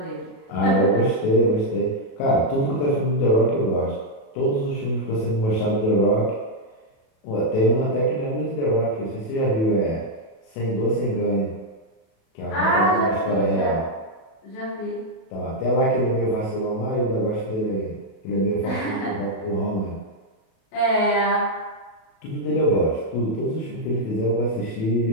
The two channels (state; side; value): late; right; 37 ms